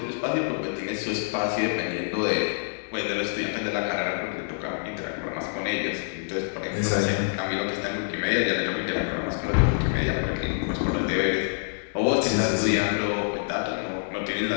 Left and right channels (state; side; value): silent; right; digital silence